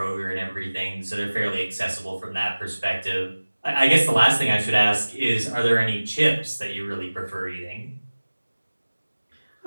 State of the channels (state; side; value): inverted; both; correlation -1.00